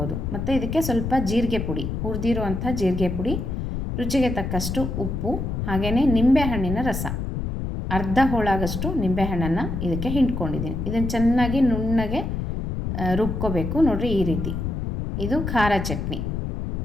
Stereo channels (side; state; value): left; noise; rumble, 3 dB below the sound